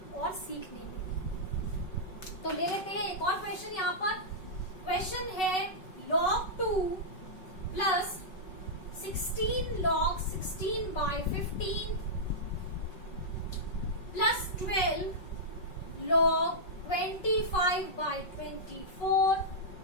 और सीखने में। तो ले लेते हैं एक और क्वेश्चन। यहाँ पर क्वेश्चन है log 2 plus 16 log 16/15 plus 12 log 25/24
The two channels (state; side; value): late; right; 5.4 ms